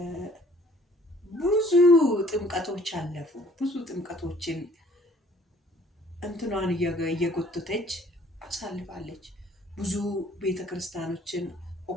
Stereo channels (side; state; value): both; normal; correlation 0.57